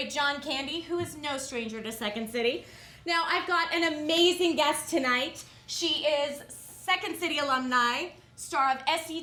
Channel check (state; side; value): identical; both; correlation 1.00